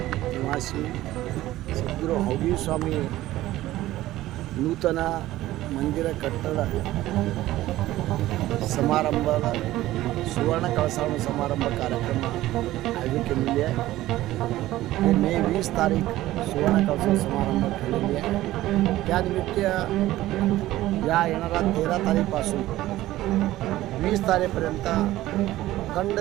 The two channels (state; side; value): quieter; left; 15.7 dB